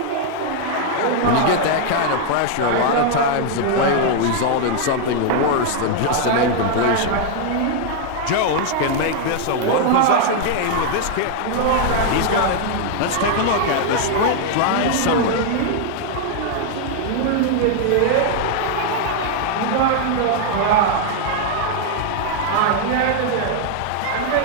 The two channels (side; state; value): both; different; correlation 0.00